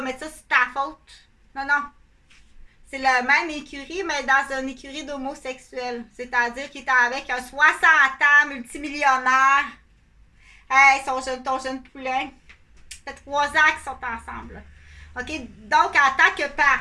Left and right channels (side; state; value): both; identical; correlation 1.00